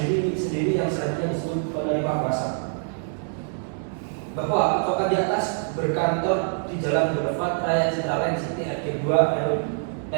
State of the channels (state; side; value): silent; left; digital silence